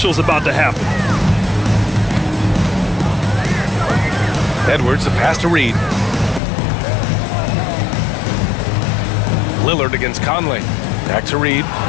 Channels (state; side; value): drops out; right; at 6.4 s